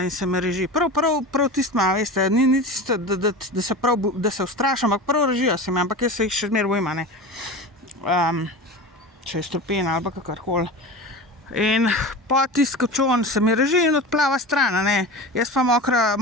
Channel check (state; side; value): normal; both; correlation 0.30